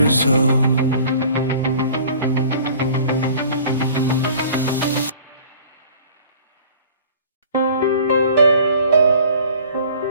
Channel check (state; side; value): inverted; both; correlation -0.49